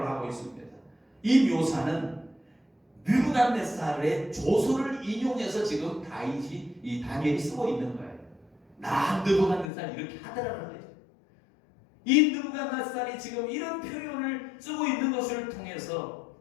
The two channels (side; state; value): right; drops out; at 9.7 s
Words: 하고 있습니다. 이 묘사는 느부갓네살의 조서를 인용해서 지금 이 다니엘이 쓰고 있는 거예요. 나 느부갓네살 이렇게 하더라는 거예요. 이 느부갓네살이 지금 이런 표현을 쓰고 있는 것을 통해서